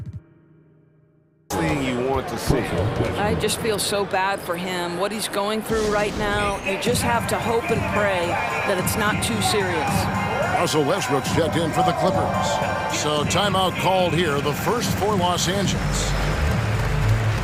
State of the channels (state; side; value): identical; both; correlation 1.00